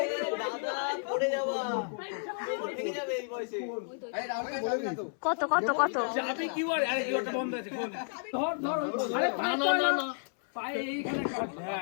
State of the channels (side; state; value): right; silent; 57 dB below the other